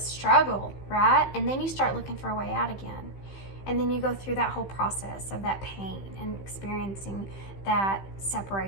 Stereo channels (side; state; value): right; late; 15 ms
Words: struggle, right? And then you start looking for a way out again. And then you go through that whole process of that pain and experiencing that